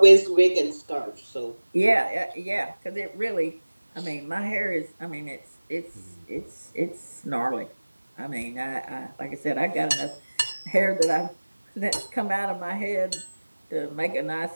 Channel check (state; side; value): inverted; both; correlation -1.00